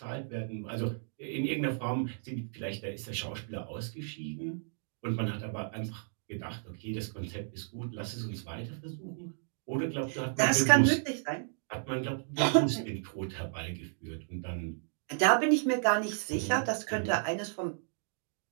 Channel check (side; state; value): left; silent; digital silence